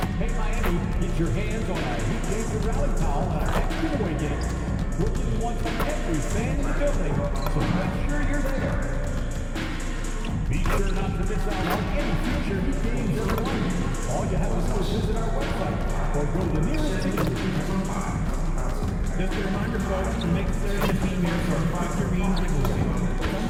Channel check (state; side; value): identical; both; correlation 1.00